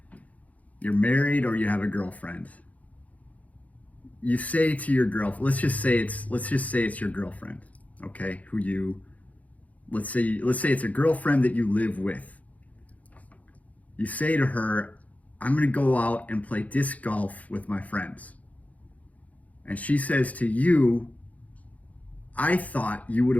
You're married or you have a girlfriend. You say to your girlfriend, let's just say it's your girlfriend, okay? Let's say it's a girlfriend that you live with. You say to her, "I'm going to go out and play disc golf with my friends." And she says to you, "I thought you would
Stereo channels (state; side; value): late; right; 0.071 ms